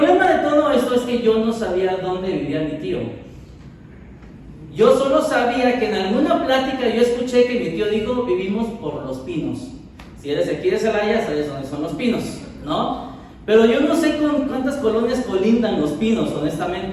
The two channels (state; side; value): identical; both; correlation 1.00